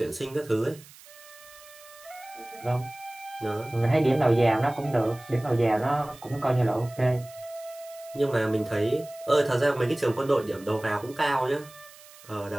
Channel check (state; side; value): noise; right; hiss, 21 dB below the sound